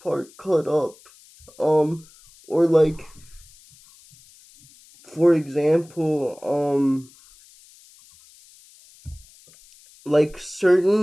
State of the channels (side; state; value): left; noise; hiss, 26 dB below the sound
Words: cut up. Um, or like, for example, like